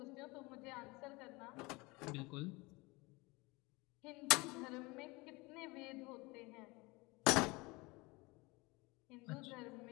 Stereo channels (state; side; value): quieter; right; 24.5 dB